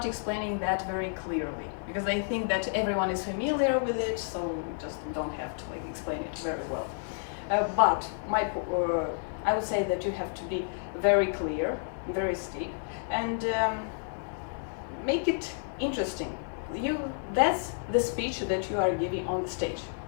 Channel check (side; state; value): right; silent; digital silence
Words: explaining that very clearly, because they think that everyone is familiar with it, so just don't have to like explain it very well. But I would say that you have to be very clear, very steep, and make it interesting. That's the speech that you are giving on the stage.